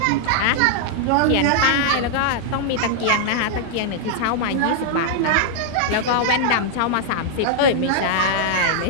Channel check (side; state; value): both; different; correlation -0.01